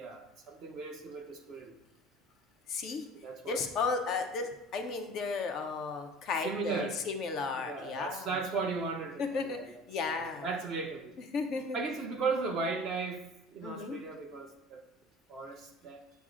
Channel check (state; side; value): normal; both; correlation 0.43